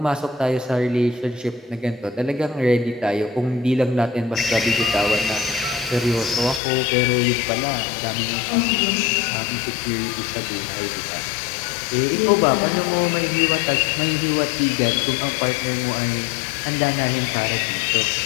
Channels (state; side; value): drops out; right; at 6.6 s